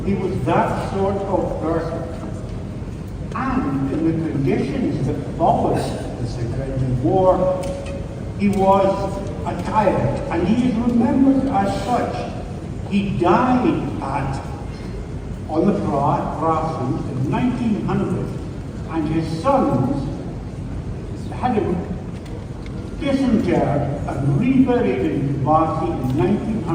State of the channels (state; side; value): identical; both; correlation 1.00